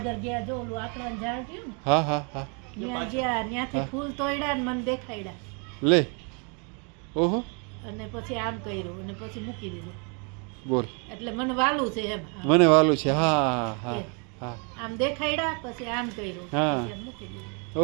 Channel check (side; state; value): left; quieter; 35.8 dB